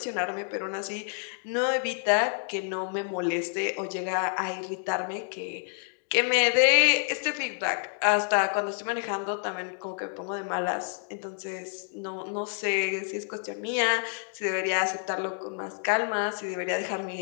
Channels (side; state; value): right; silent; 59 dB below the other